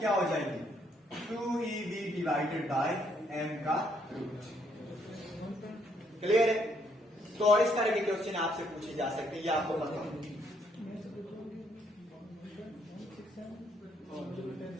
हो जाएगी, 2eV डिवाइडेड बाय m का रूट। क्लियर है। तो इस तरह के क्वेश्चन आपसे पूछे जा सकते हैं, ये आपको पता हो।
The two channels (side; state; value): both; normal; correlation 0.70